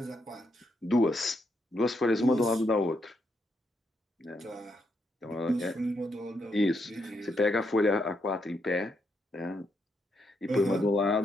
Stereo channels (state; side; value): normal; both; correlation 0.79